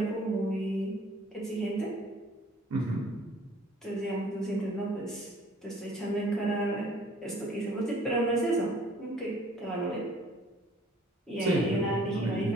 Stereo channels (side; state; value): both; normal; correlation 0.55